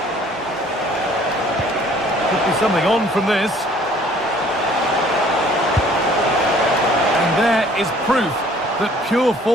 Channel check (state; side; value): normal; both; correlation 0.56